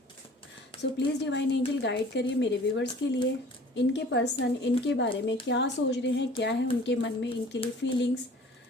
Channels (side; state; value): both; normal; correlation 0.48